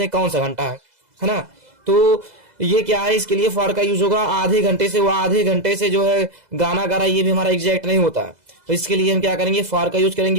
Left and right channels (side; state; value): left; late; 2.0 ms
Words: कौन सा घंटा है ना। तो ये क्या है, इसके लिए फार का यूज होगा। आधे घंटे से, वो आधे घंटे से जो है गाना गा रहा है, ये भी हमारा एग्जैक्ट नहीं होता है, तो इसके लिए हम क्या करेंगे, फार का यूज